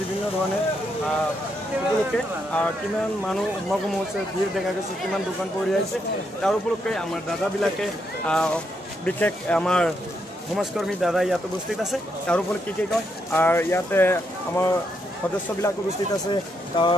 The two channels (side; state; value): both; normal; correlation 0.79